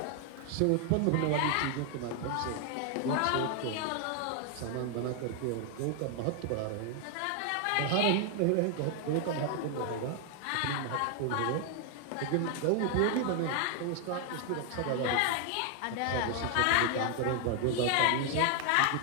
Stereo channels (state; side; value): different; both; correlation 0.00